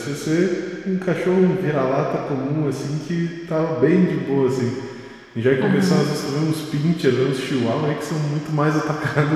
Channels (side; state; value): both; identical; correlation 1.00